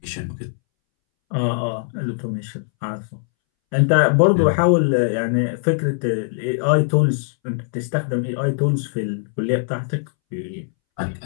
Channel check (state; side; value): silent; right; 64 dB below the other